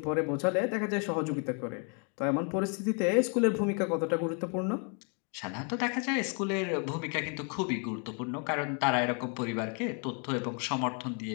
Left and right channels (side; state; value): right; quieter; 39.2 dB